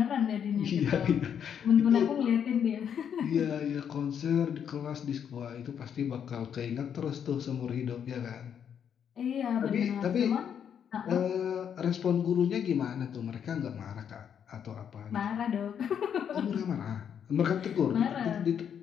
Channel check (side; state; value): right; quieter; 8.3 dB